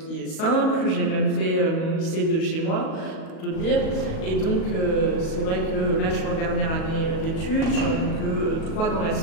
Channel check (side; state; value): right; late; 37 ms